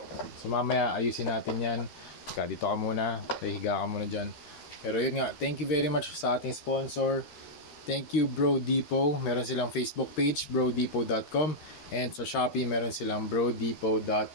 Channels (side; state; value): right; late; 13 ms